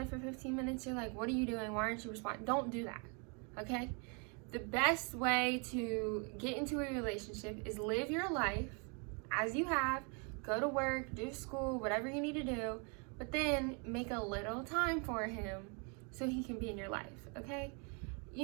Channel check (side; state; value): left; quieter; 35.5 dB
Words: for 15 minutes, you're like, what are you doing? Why aren't you responding? Don't do that, okay? The best way to get into a relationship is live your life as you have, go to work, do school, whatever you need to do, but then make a little time for him so he can be in your life, okay?